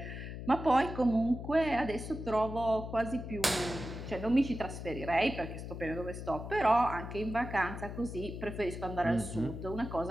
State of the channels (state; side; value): noise; left; hum, 8 dB below the sound